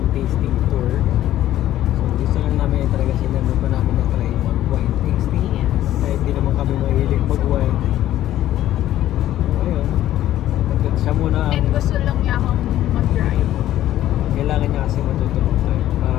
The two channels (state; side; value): quieter; right; 13.1 dB